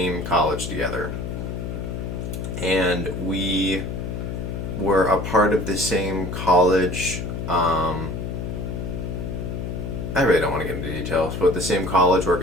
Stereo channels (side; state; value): left; noise; hum, 5 dB below the sound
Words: college together. And we were a part of the same college, I really don't want to get into details, but the same college